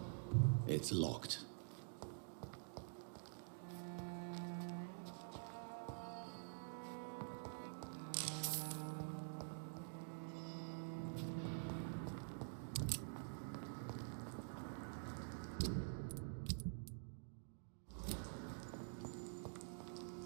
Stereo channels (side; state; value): left; silent; digital silence